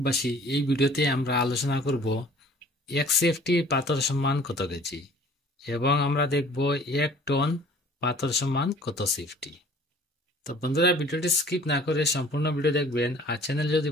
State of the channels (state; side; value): normal; both; correlation 0.51